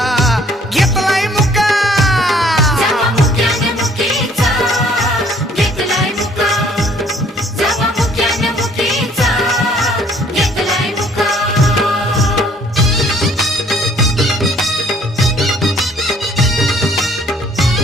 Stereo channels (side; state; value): both; normal; correlation 0.59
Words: घेतलाय मुका जवा मुक्यानं मुकीचा घेतलाय मुका जवा मुक्यानं मुकीचा घेतलाय मुका